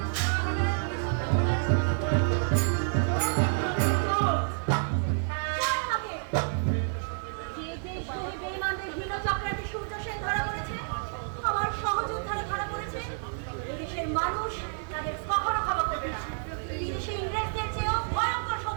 যে দেশগুলি বেঈমানদের হীন চক্রান্তে সূর্য সেন ধরা পড়েছে, আমার সহযোদ্ধারা ধরা পড়েছে, এদেশের মানুষ তাদের কখনো ক্ষমা করবে না। বিদেশি ইংরেজদের চেয়েও ভয়ঙ্কর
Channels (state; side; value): silent; left; digital silence